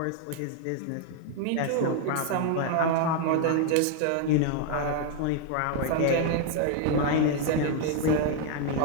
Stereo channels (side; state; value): both; different; correlation 0.00